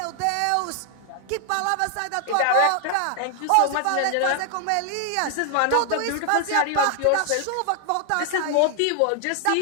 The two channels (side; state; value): both; different; correlation 0.00